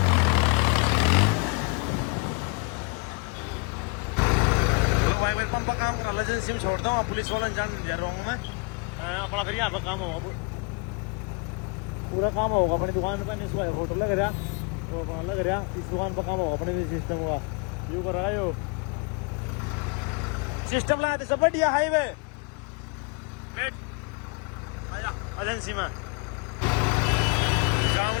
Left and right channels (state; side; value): quieter; right; 33.5 dB